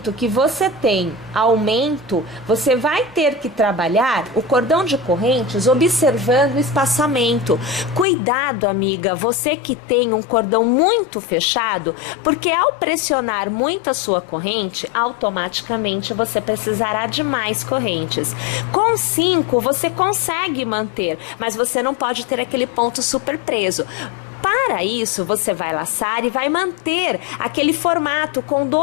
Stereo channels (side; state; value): right; drops out; at 8.1 s